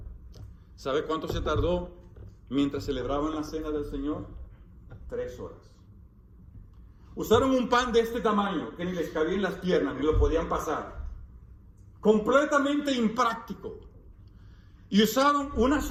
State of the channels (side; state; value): both; identical; correlation 1.00